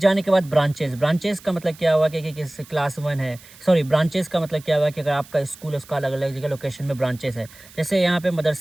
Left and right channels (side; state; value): right; noise; hiss, 22 dB below the sound